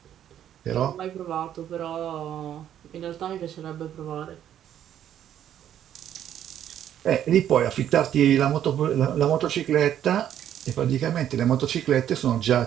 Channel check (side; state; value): left; quieter; 10.5 dB